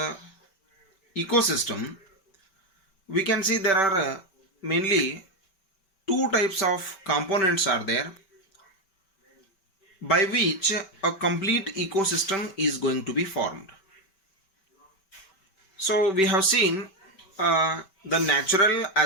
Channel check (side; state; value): right; late; 5.2 ms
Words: ecosystem, we can see there are mainly two types of components are there by which a complete ecosystem is going to be formed. So we have seen the natural